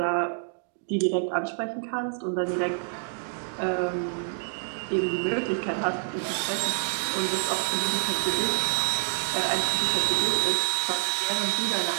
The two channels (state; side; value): silent; left; digital silence